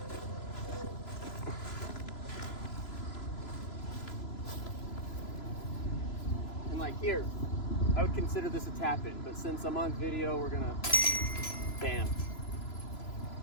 And like here, I would consider this a tap in, but since I'm on video, we're gonna, bam.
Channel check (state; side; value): late; right; 3.0 ms